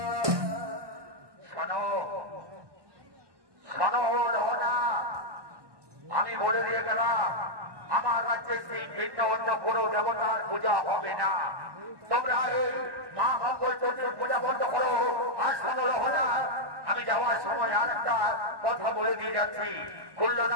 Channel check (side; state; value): left; late; 1.2 ms